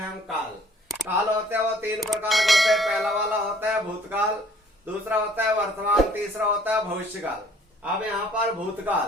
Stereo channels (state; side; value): normal; both; correlation 0.57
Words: काल। काल होते हैं वो तीन प्रकार के होते हैं। पहला वाला होता है भूतकाल, दूसरा होता है वर्तमान, तीसरा होता है भविष्यकाल। अब यहाँ पर